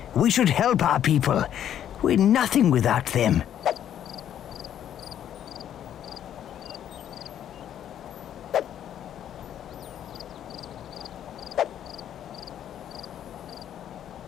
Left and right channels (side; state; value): right; quieter; 10.3 dB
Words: We should help our people. We're nothing without them.